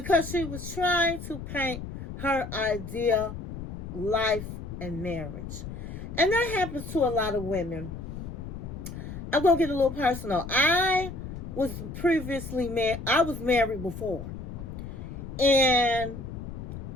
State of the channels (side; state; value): left; noise; rumble, 9 dB below the sound